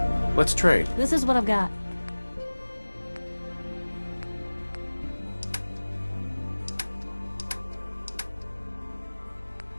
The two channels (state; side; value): inverted; both; correlation -1.00